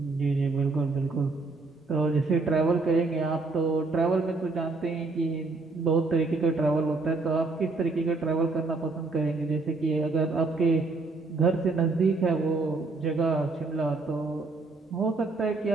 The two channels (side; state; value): left; quieter; 3.6 dB